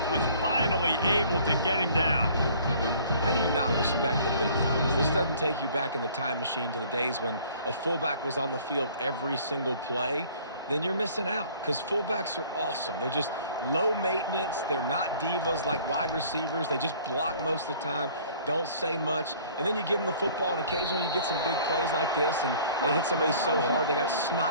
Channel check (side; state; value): both; inverted; correlation -0.53